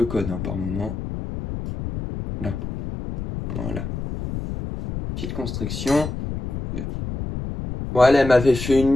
conne hein, par moment. Là, voilà. Petite constriction. Voilà, elle m'avait fait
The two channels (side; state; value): left; noise; rumble, 6 dB below the sound